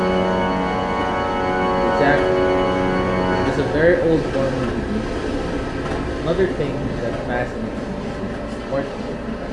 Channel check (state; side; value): identical; both; correlation 1.00